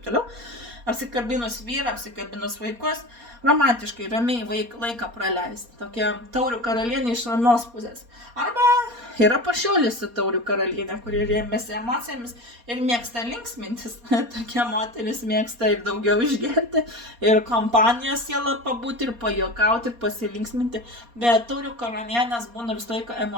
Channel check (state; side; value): late; left; 4.2 ms